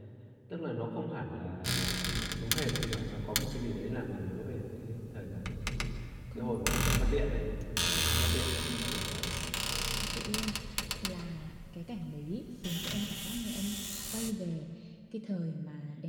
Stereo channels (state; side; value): identical; both; correlation 1.00